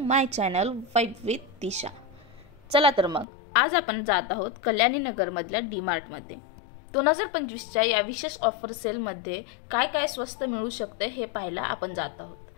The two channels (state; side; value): drops out; right; at 3.2 s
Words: channel vibe with Disha. चला तर मग आज आपण जात आहोत कल्याणी नगरमधल्या डीमार्टमध्ये। 2025च्या या विशेष ऑफर सेलमध्ये काय काय स्वस्त मिळू शकते हे पाहायला आपण जात